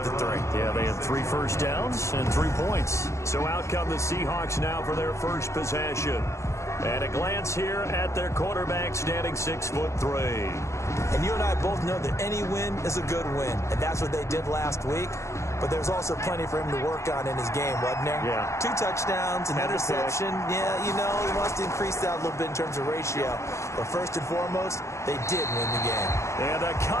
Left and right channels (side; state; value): right; late; 0.14 ms